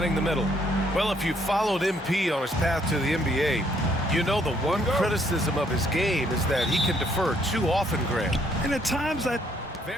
the middle. Well, if you followed MP on his path to the NBA, you know the one criticism of his game is that he can defer too often, Grant. And at times that...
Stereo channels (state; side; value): normal; both; correlation 0.68